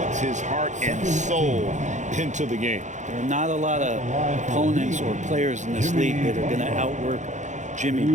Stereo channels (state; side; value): late; left; 0.35 ms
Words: his heart and soul into the game. There are not a lot of opponents or players in this league that are going to outwork Jimmy